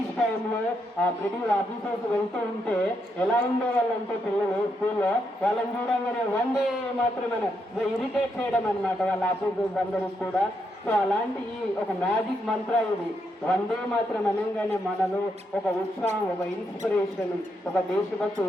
టైంలో ఆ బ్రిటిష్ ఆఫీసర్స్ వెళ్తూ ఉంటే ఎలా ఉండేవాళ్ళంటే పిల్లలు స్కూల్లో వాళ్ళని చూడంగానే వందే మాత్రమే ఇరిటేట్ చేయడం అనమాట వాళ్ళ ఆఫీసర్స్ అందరికి కూడా. సో అలాంటి ఈ ఒక మ్యాజిక్ మంత్ర ఇది వందే మాత్రం అనగానే మనలో ఒక ఉత్సాహం, ఒక ఇన్స్పిరేషన్, ఒక దేశభక్తి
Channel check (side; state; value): both; normal; correlation 0.80